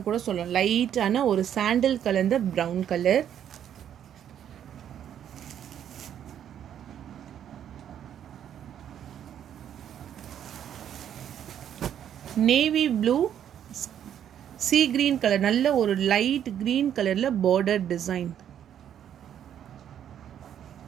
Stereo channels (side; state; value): left; quieter; 9.7 dB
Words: கூட சொல்லலாம். லைட்டான ஒரு சாண்டில் கலர்ந்த brown colour. Navy blue sea green colour, நல்ல ஒரு லைட் கிரீன் கலரில் பார்டர் டிசைன்.